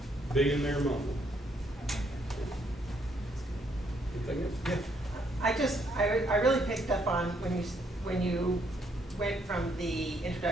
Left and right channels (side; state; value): both; normal; correlation 0.71